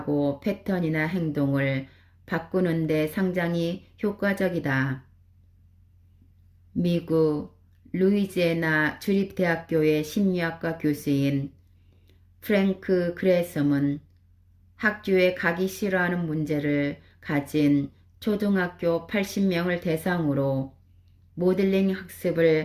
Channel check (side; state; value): both; identical; correlation 1.00